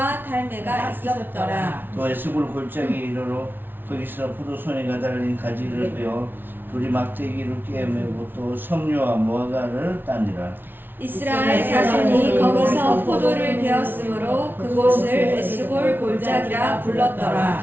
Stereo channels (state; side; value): late; left; 0.098 ms